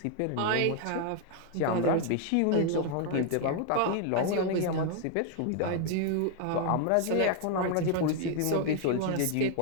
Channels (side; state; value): both; different; correlation 0.00